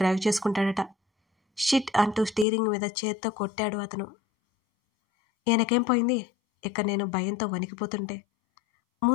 డ్రైవ్ చేసుకుంటాడట. షిట్ అంటూ స్టీరింగ్ మీద చేత్తో కొట్టాడు అతను. ఈయనకేం పోయింది? ఇక నేను భయంతో వణికిపోతుంటే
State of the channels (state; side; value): drops out; right; at 2.5 s